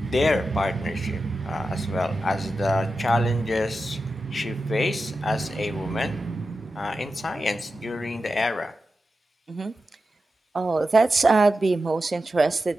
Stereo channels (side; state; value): both; normal; correlation 0.91